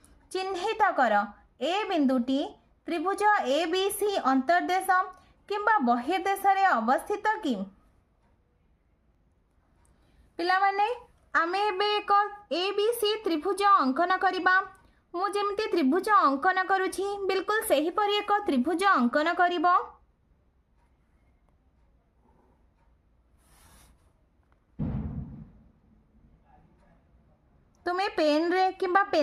चिन्हित कर। ए बिंदुटी त्रिभुज ए बी सी अंतर्देश किंबा बहिर्देश रे अवस्थित कि? पिला माने आमे एबे एक ए बी सी त्रिभुज अंकन करिबा। मु जेमती त्रिभुज अंकन करूछि बिल्कुल सही परि एक त्रिभुज अंकन करिबो। तुमे पेन रे किंबा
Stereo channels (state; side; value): identical; both; correlation 1.00